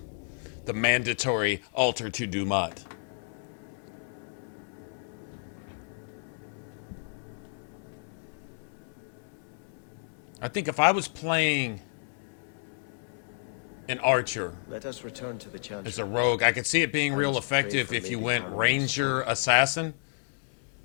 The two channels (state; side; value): silent; right; digital silence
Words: The mandatory altar to Dumat. I think if I was playing an archer Let us return to the Chantry. as a rogue, I could see it being real effective if you went ranger assassin.